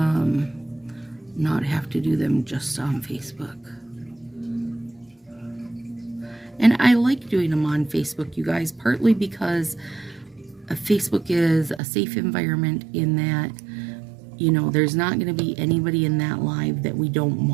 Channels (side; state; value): left; drops out; at 11.8 s